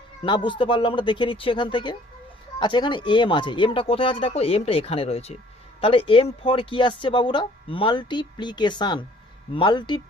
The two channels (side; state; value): both; normal; correlation 0.56